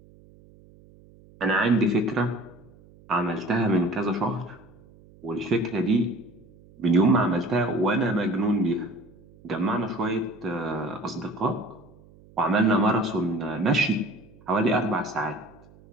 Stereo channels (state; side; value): noise; right; hum, 25 dB below the sound